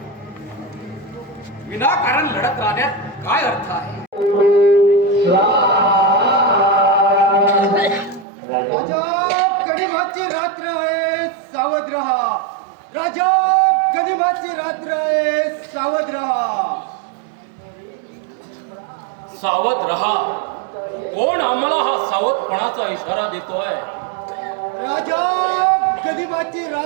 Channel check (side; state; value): left; drops out; at 8.2 s